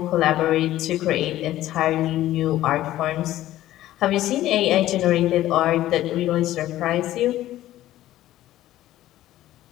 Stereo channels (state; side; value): quieter; right; 14.3 dB